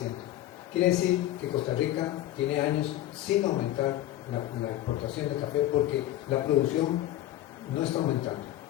Quiere decir que Costa Rica tiene años sin aumentar la exportación de café porque la producción no está aumentando.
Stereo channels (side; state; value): right; quieter; 14.0 dB